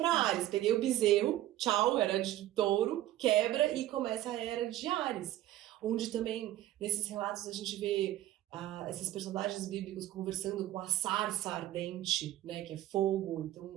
Áries. Peguei o bezerro, tchau, era de touro, quebra e começa a era de Áries. Onde também, nesses relatos, a gente vê esses personagens bíblicos conversando com a sarça ardente, né, que é fogo.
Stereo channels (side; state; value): left; quieter; 14.0 dB